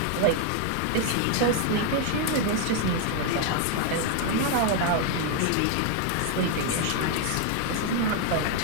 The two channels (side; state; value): both; different; correlation 0.00